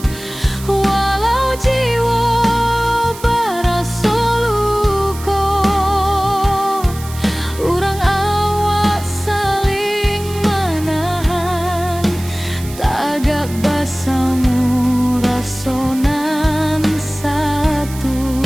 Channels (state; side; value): noise; right; hiss, 16 dB below the sound